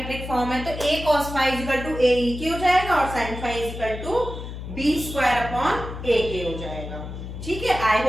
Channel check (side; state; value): left; noise; hum, 9 dB below the sound